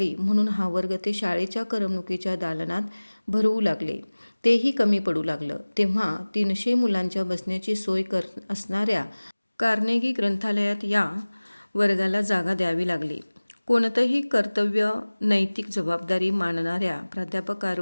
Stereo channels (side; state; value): both; inverted; correlation -1.00